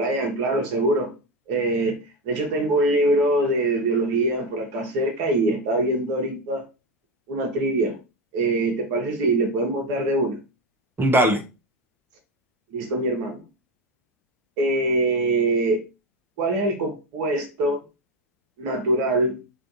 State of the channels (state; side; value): normal; both; correlation 0.13